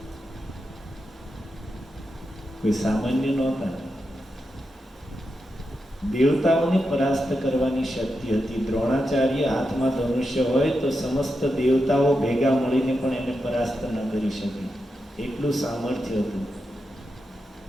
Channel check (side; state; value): both; normal; correlation 0.87